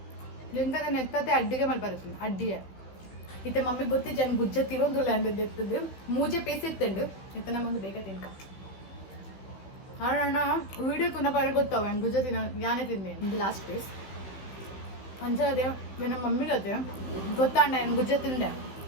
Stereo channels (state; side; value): late; right; 15 ms